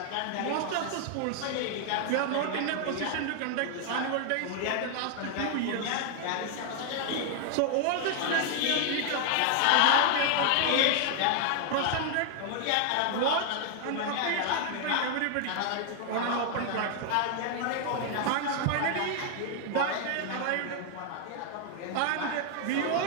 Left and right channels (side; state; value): both; different; correlation 0.00